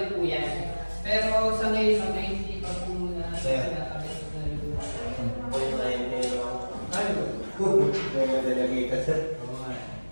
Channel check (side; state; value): both; inverted; correlation -1.00